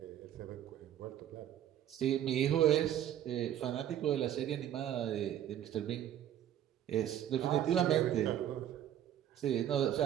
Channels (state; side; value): quieter; left; 11.1 dB